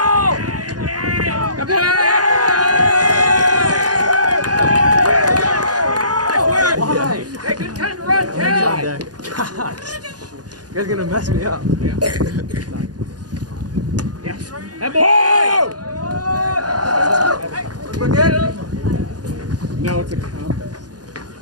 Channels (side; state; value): left; late; 0.69 ms